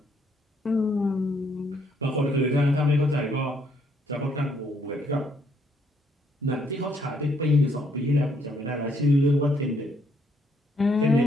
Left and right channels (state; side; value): normal; both; correlation 0.70